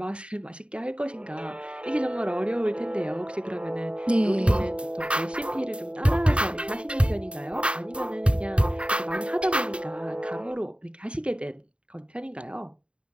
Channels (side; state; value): left; late; 0.056 ms